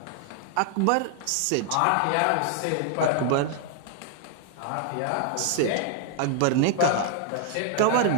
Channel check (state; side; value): different; both; correlation 0.00